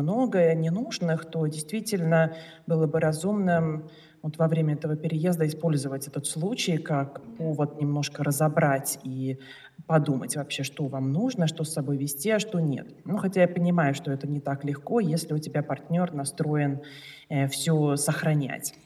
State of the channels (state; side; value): identical; both; correlation 1.00